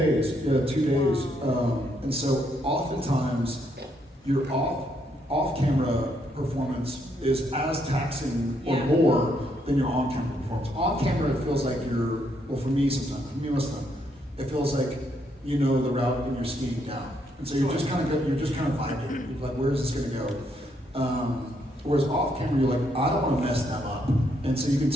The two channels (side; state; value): both; normal; correlation 0.74